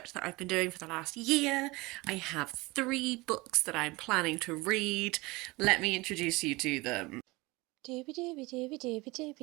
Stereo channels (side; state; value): left; quieter; 22.8 dB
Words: that I've been doing for the last year. I have 3 books that I'm planning to read. Let me introduce you to them. Doobie doobie doobie doobie